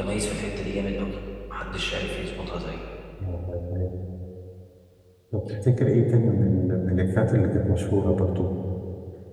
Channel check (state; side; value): identical; both; correlation 1.00